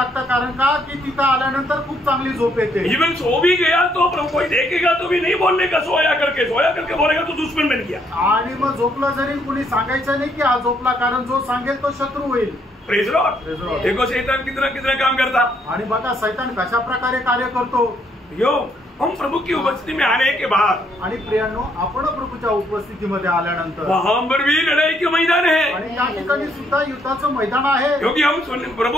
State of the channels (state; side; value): normal; both; correlation 0.71